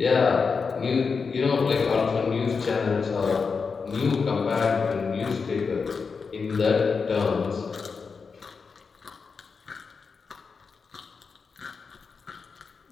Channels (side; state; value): right; quieter; 5.2 dB